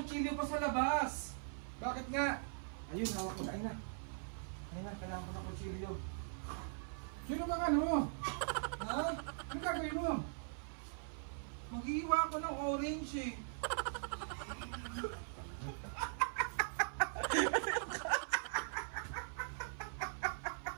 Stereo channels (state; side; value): silent; left; 50 dB below the other